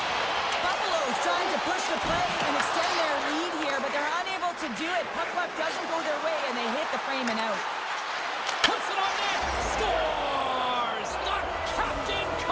Buffalo's trying to push the play and extend their lead here, but they're unable to do it. Puck doesn't go their way, and they hit the frame and out. Puts it on net. Scores! The captain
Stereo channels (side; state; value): both; identical; correlation 1.00